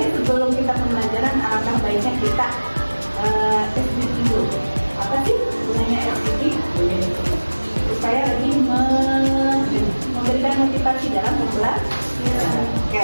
sebelum kita pembelajaran, alangkah baiknya kita SDG dulu. Apa sih gunanya SDG? Supaya lebih memberikan motivasi dalam belajar.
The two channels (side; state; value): both; inverted; correlation -1.00